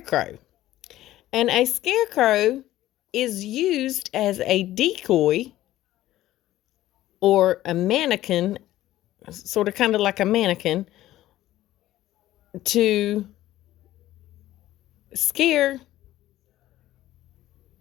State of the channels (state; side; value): quieter; right; 14.7 dB